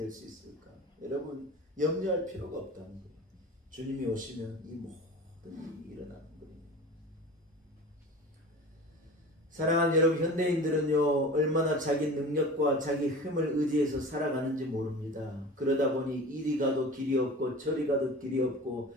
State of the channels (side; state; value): both; normal; correlation 0.37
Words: 수 있을까? 여러분 염려할 필요가 없다는 거예요. 주님이 오시면 이 모든 일이 일어나는 거예요. 사랑하는 여러분, 현대인들은요 얼마나 자기 능력과 자기 힘을 의지해서 살아가는지 모릅니다. 그러다 보니 이리 가도 길이 없고 저리 가도 길이 없고